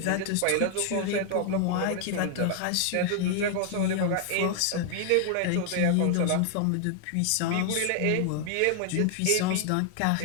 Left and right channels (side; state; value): both; different; correlation 0.00